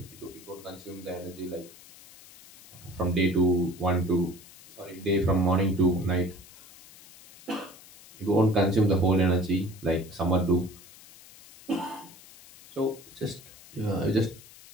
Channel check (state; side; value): noise; left; hiss, 21 dB below the sound